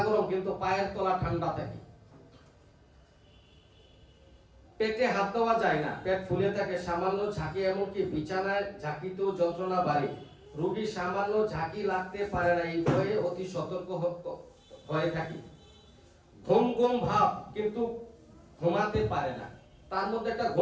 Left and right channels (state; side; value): identical; both; correlation 1.00